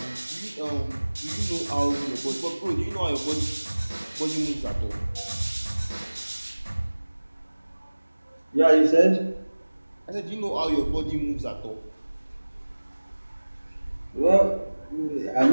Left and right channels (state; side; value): inverted; both; correlation -1.00